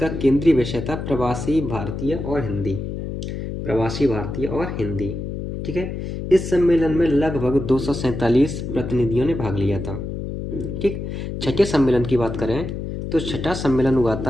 केंद्रीय विषय था प्रवासी भारतीय और हिंदी। प्रवासी भारतीय और हिंदी। ठीक है, इस सम्मेलन में लगभग 247 प्रतिनिधियों ने भाग लिया था। ठीक, छठे सम्मेलन की बात करें तो छठा सम्मेलन हुआ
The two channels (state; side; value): noise; left; hum, 6 dB below the sound